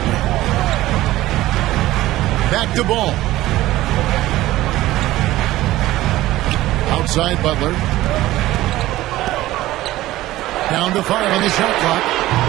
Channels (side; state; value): left; quieter; 16.2 dB